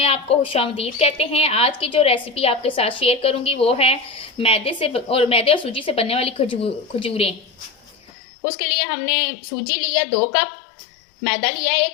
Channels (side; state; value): right; drops out; at 8.1 s